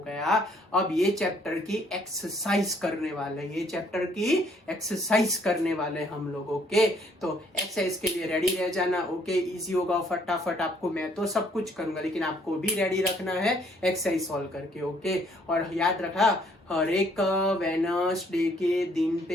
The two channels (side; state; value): both; normal; correlation 0.65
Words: अब ये चैप्टर की एक्सरसाइज करने वाले हम लोग ओके तो एक्सरसाइज के लिए रेडी रह जाना ओके इजी होगा फटाफट आपको मैं तो सब कुछ करूंगा लेकिन आपको भी रेडी रखना है एक्सरसाइज सॉल्व करके ओके और याद रखा हर एक वेडनेसडे के दिन